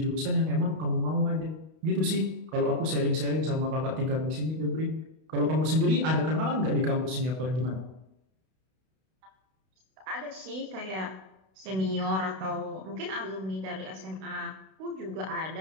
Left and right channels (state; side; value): late; left; 32 ms